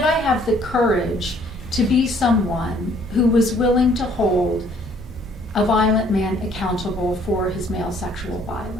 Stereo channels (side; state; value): both; normal; correlation 0.61